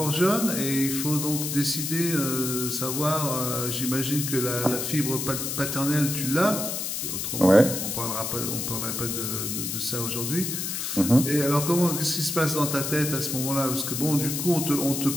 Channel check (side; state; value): left; noise; hiss, 3 dB below the sound